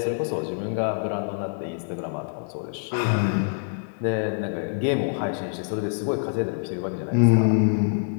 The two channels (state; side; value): silent; right; digital silence